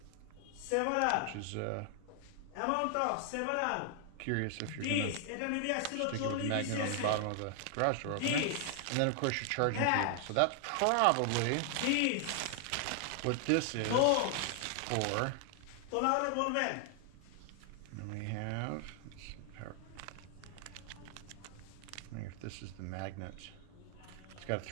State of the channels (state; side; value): different; both; correlation 0.00